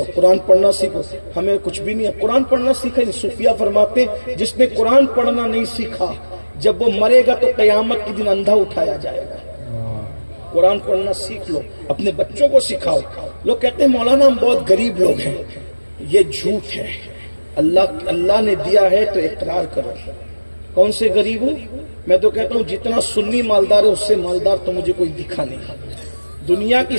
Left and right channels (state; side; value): inverted; both; correlation -1.00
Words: قرآن پڑھنا سیکھو. ہمیں کچھ بھی نہیں ہے, قرآن پڑھنا سیکھا نہیں. صوفیہ فرماتے جس نے قرآن پڑھنا نہیں سیکھا, جب وہ مرے گا تو قیامت کے دن اندھا اٹھایا جائے گا. قرآن پڑھنا سیکھ لو, اپنے بچوں کو سکھاؤ. لوگ کہتے ہیں مولانا ہم بہت غریب لوگ ہیں. یہ جھوٹ ہے. اللہ نے دیا ہے تو اقرار کرو. کون سے غریب ہوں؟ میں تو کہتا ہوں جتنا سنی مالدار ہے اس سے مالدار تو مجھے کوئی دکھا نہیں. دنیا کی